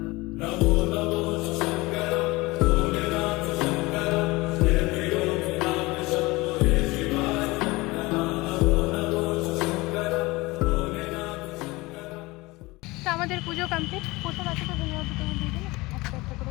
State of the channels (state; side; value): quieter; right; 22.1 dB